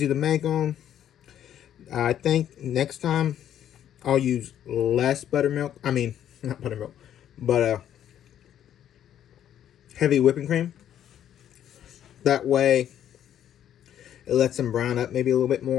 to make them. I think next time I'll use less buttermilk. I mean, not buttermilk, but heavy whipping cream. That way, it lets them brown up maybe a little bit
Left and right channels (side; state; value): right; quieter; 10.5 dB